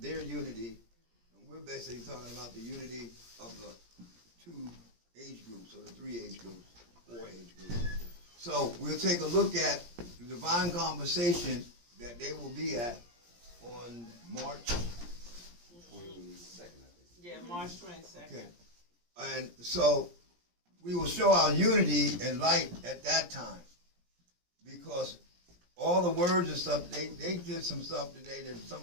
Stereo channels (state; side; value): late; left; 17 ms